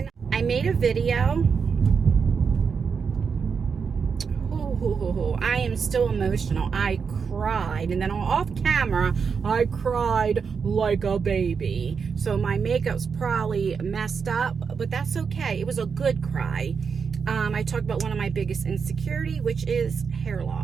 I made a video. I am still emotional. I cried, and then off camera I cried like a baby. So my makeup's probably messed up, but that's okay. It was a good cry. I talked about one of my biggest insecurity, which is hair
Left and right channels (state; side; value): quieter; left; 5.9 dB